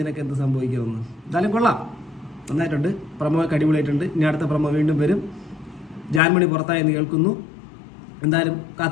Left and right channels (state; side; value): drops out; right; at 6.2 s